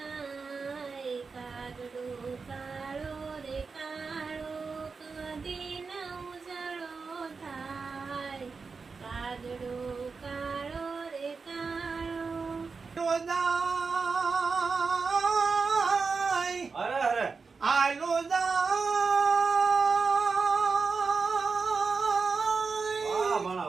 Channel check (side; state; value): left; quieter; 4.8 dB